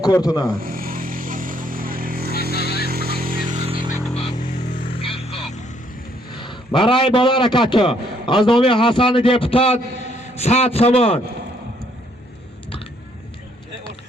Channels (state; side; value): normal; both; correlation 0.68